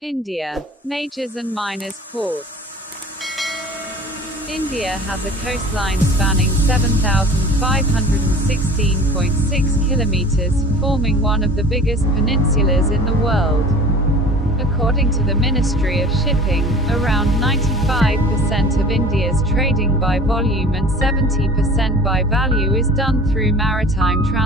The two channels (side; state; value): both; normal; correlation 0.43